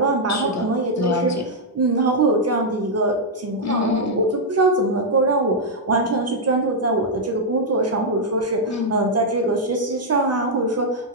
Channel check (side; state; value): both; normal; correlation -0.04